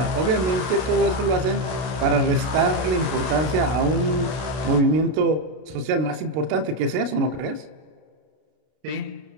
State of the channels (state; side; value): late; left; 32 ms